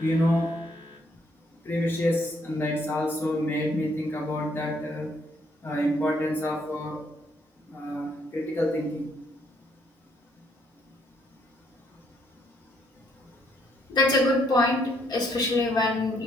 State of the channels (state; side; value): normal; both; correlation 0.70